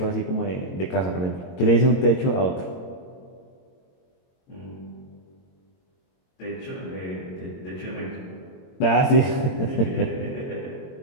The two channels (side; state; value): right; late; 22 ms